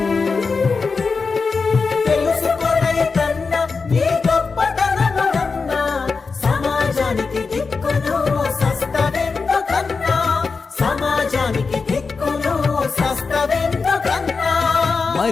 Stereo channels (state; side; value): quieter; right; 4.6 dB